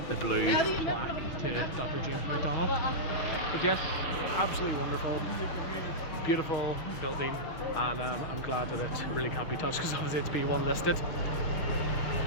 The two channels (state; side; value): late; right; 6.4 ms